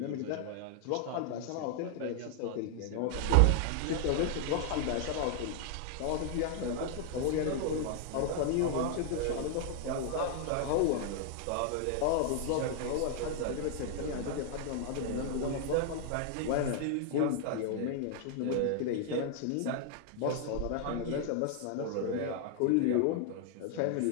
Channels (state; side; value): different; both; correlation 0.00